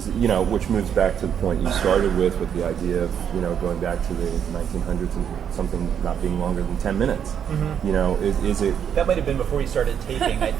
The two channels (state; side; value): quieter; left; 8.4 dB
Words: you know, which moves back to the point you started with the idea of, you know, going back to the 1900s and something not being longer than 10 minutes. You know, is it... That might have been before you started taping, I